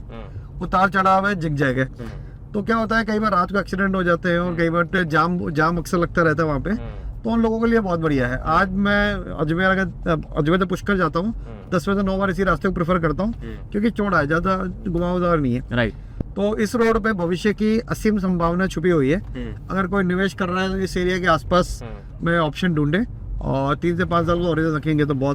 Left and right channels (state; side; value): identical; both; correlation 1.00